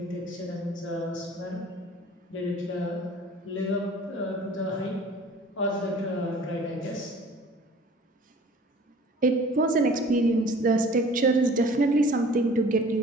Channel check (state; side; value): normal; both; correlation 0.48